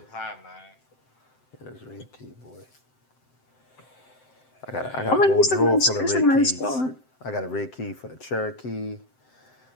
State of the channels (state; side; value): late; right; 7.7 ms